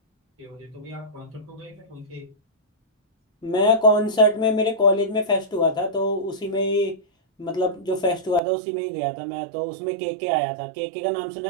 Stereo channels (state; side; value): drops out; left; at 8.4 s